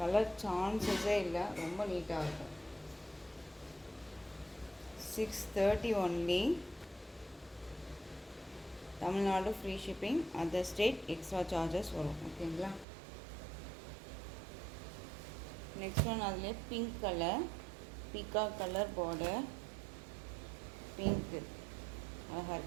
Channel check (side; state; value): left; drops out; at 12.9 s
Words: சான்சஸே இல்லை, ரொம்ப நீட்டாக இருக்கும். 630 only. Tamil Nadu free shipping. Other state extra charges வரும். ஓகேங்களா, நெக்ஸ்ட் ஒன் அதிலே pink colour, peacock colour border. Pink அழகாக